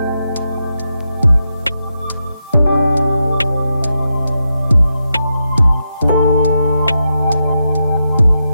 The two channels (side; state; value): both; inverted; correlation -0.86